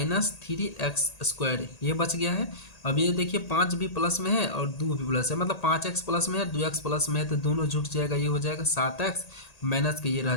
ये बच गया है। अब ये देखिए 5 भी प्लस में है और 2 भी प्लस है, मतलब 5x प्लस में है, 2x प्लस में है, तो दोनों जुट जाएगा, ये हो जाएगा 7x, माइनस के ये रह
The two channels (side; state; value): right; late; 1.8 ms